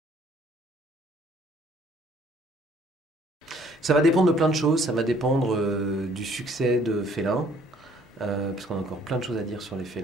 Ça va dépendre de plein de choses. Ça va dépendre du succès de Félin, parce qu'on a encore plein de choses à dire sur les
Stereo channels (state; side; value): normal; both; correlation 0.60